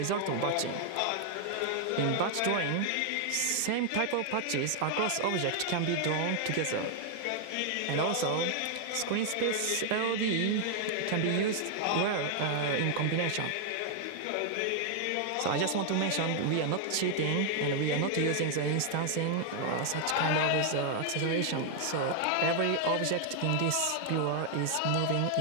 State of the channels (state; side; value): different; both; correlation 0.00